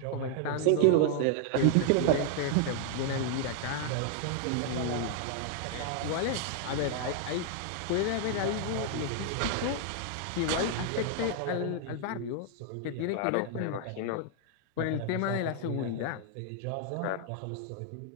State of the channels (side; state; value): both; different; correlation 0.00